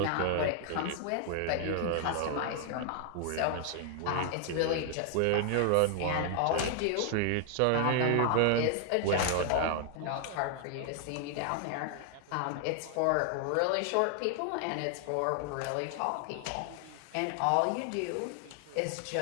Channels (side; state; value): both; different; correlation 0.00